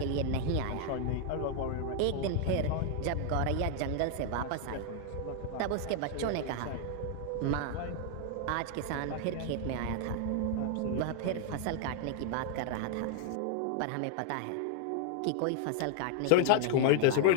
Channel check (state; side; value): different; both; correlation 0.00